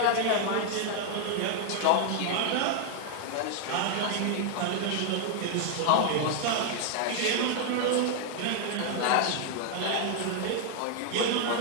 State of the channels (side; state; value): both; different; correlation 0.00